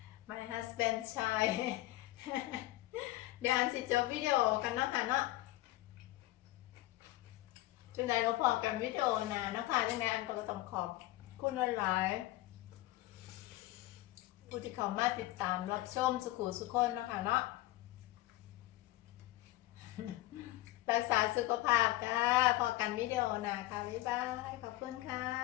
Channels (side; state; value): right; quieter; 17.4 dB